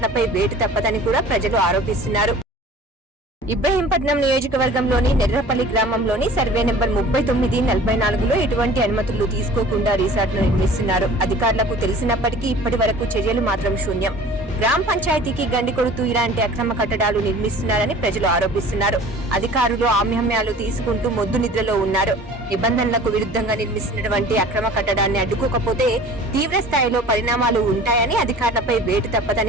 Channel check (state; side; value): normal; both; correlation 0.45